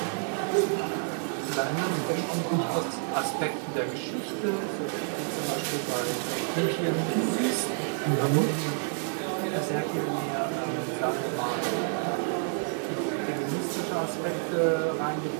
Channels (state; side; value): silent; left; 59 dB below the other